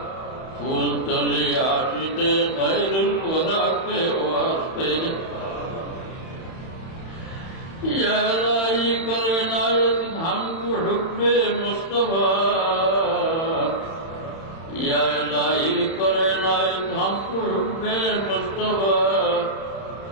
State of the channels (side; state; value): right; late; 31 ms